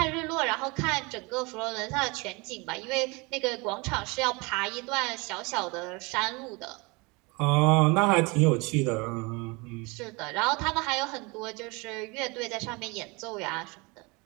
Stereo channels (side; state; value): left; quieter; 27.0 dB